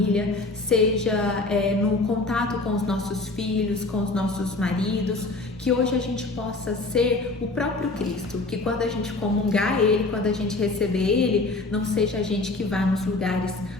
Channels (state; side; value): quieter; right; 3.2 dB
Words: seja no contato com os nossos filhos, com os nossos maridos, que hoje a gente possa ser o próprio Cristo, que quando a gente comungar Ele, quando a gente receber Ele, não seja a gente que vá nos lugares,